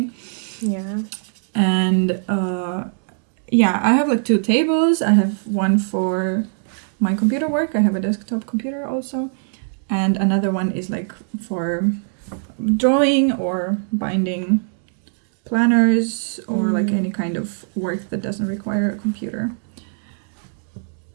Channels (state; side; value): silent; left; digital silence